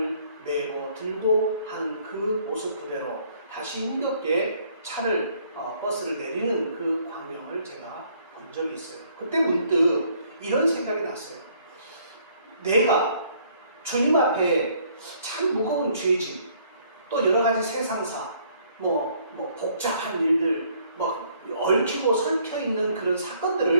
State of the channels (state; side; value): inverted; both; correlation -0.63